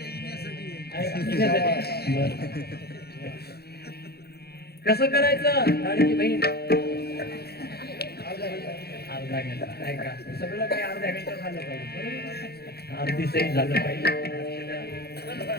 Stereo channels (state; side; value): late; right; 0.46 ms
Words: कसं करायचं लाडकी बहीण अर्धा घंटा नाही का सगळं काही अर्ध्या घंटा झालं पाहिजे. अर्धी सही झालं पाहिजे.